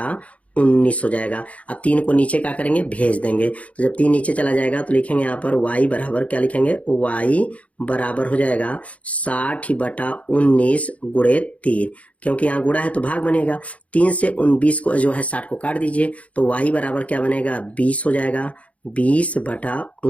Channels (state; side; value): late; right; 0.066 ms